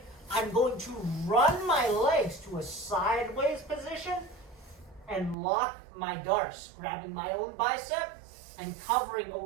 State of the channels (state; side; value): drops out; left; at 5.4 s